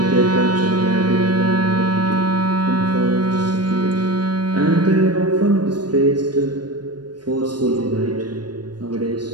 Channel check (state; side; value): late; left; 0.70 ms